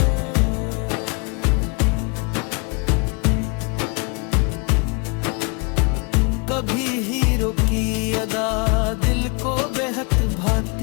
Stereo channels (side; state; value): right; quieter; 32.4 dB